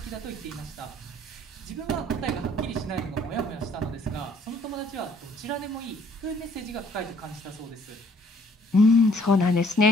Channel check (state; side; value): normal; both; correlation 0.61